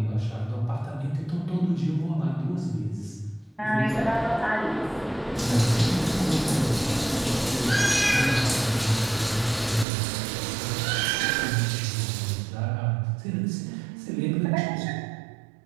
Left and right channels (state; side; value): drops out; left; at 9.9 s